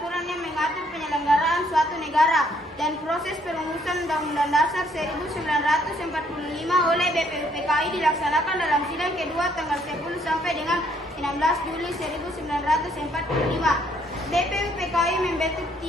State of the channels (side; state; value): both; normal; correlation 0.67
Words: yang mengatur penyelenggaraan suatu negara dan proses perumusan Undang-Undang Dasar 1945 oleh BPUPKI dilaksanakan dalam sidang kedua tanggal 10 sampai dengan 16 Juli 1945. BPUPKI membentuk